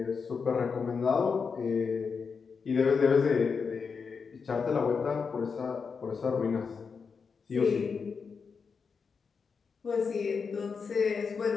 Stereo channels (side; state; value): right; quieter; 5.5 dB